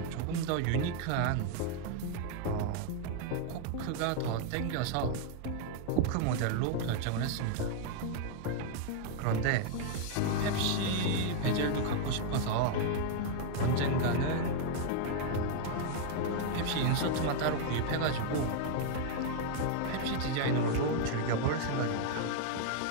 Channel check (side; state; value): both; different; correlation 0.00